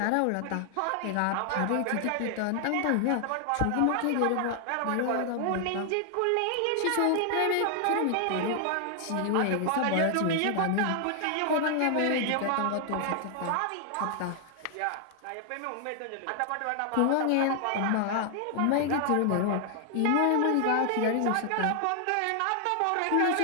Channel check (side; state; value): both; different; correlation 0.00